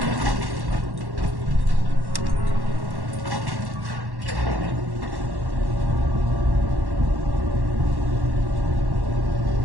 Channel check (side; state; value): left; late; 1.1 ms